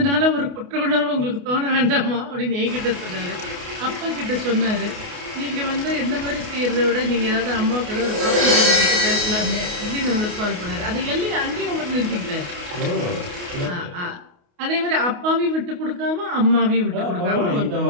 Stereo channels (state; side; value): late; left; 28 ms